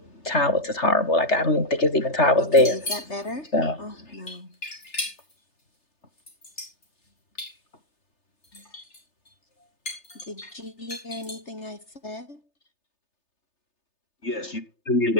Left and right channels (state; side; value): late; right; 3.3 ms